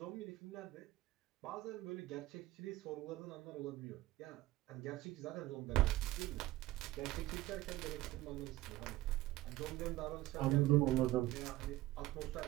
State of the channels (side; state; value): left; quieter; 16.7 dB